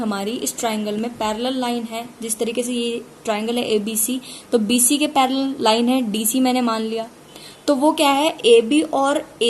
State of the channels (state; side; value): identical; both; correlation 1.00